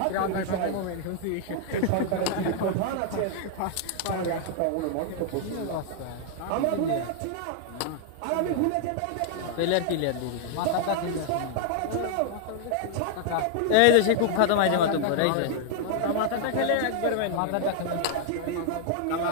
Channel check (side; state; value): both; different; correlation -0.01